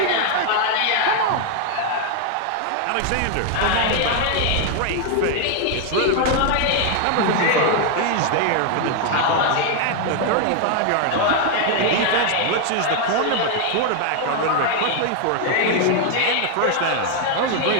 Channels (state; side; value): different; both; correlation 0.00